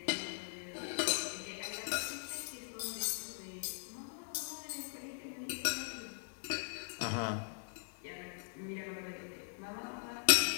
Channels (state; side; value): silent; right; digital silence